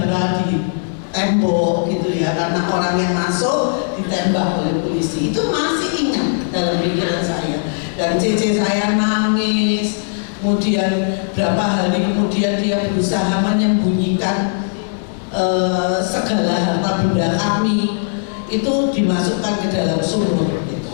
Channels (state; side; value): silent; right; digital silence